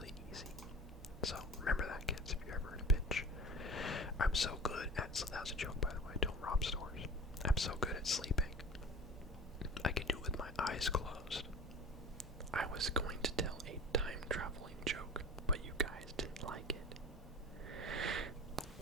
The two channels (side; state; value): both; normal; correlation 0.37